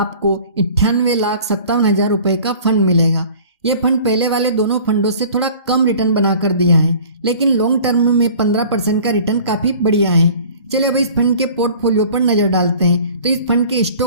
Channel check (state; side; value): inverted; both; correlation -0.47